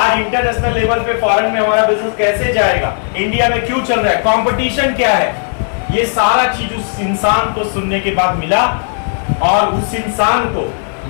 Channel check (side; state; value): right; silent; 58 dB below the other